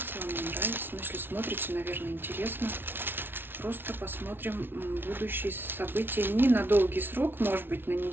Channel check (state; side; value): late; left; 0.10 ms